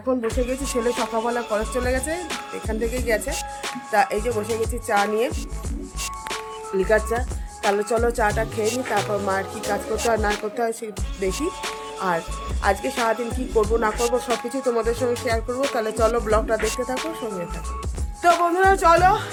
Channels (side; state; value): both; identical; correlation 1.00